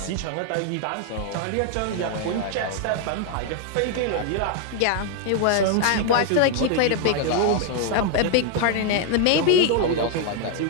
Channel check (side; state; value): both; different; correlation 0.00